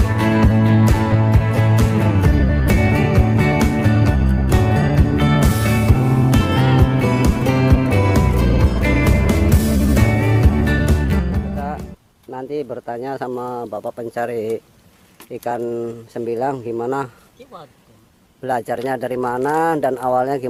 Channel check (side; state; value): both; identical; correlation 1.00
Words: Nanti bertanya sama bapak pencari ikan sembilang gimana belajarnya, dari mana dan awalnya